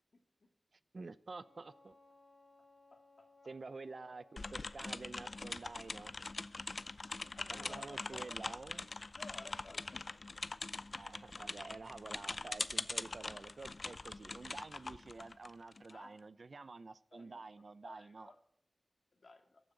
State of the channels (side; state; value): both; normal; correlation 0.96